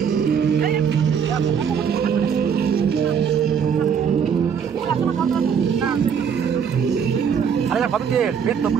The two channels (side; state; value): left; quieter; 7.2 dB